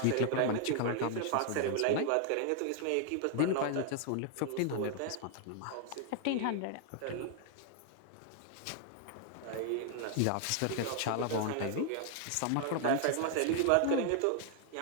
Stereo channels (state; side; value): different; both; correlation 0.00